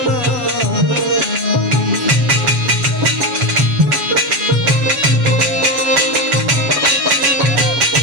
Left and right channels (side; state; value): left; late; 7.3 ms